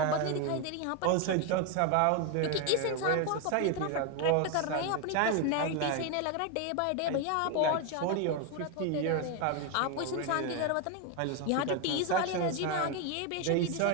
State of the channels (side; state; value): both; different; correlation 0.01